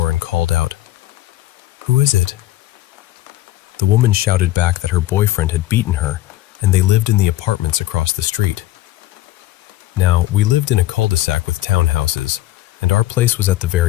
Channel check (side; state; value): right; quieter; 15.5 dB